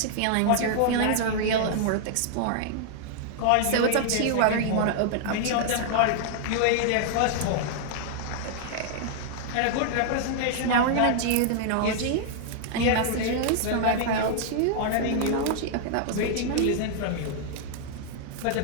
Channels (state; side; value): different; both; correlation -0.01